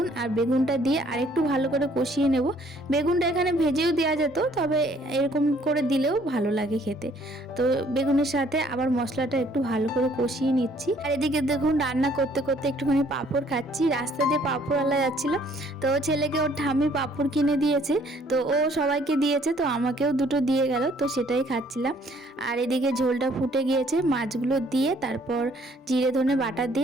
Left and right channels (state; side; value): normal; both; correlation 0.61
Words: আর বেগুনটা দিয়ে আরেকটু ভালো করে কষিয়ে নেব। বেগুনটা এখানে ভেজেও দেওয়া যেত, তবে এরকম করে দিলেও ভালো লাগে খেতে। তো বেগুনের সাথে আবার মশলাটা একটু ভালো করে কষিয়ে নিচ্ছি। আর এদিকে দেখুন রান্না করতে করতে একটুখানি পাঁপড় খাচ্ছি। রাস্তা দিয়ে পাঁপড়ওয়ালা যাচ্ছিল, তো ছেলেকে ওর ঠাম্মি পাঁপড় কিনে দিয়েছে, তো ও সবাইকে দিয়েছে, তো আমাকেও দুটো দিয়ে গেল, তো সেটাই খাচ্ছিলাম। আর এদিকে ঝোলটা ফুটে গিয়েছে, মাছগুলো দিয়ে তারপর জিরে ধনে বাটা